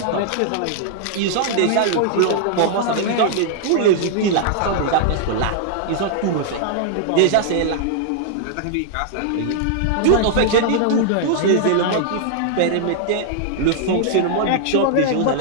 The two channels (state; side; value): different; both; correlation -0.01